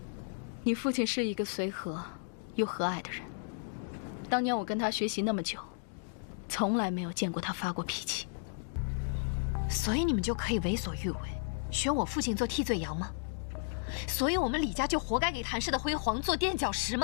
你父亲是一个随和又和蔼的人，当年我跟他学习那么久，从来没有见过他发过脾气。所以你们就可以为所欲为，选我父亲做替罪羊吗？所以我们李家就活该给谭氏的辉煌做垫脚石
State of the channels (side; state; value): right; silent; digital silence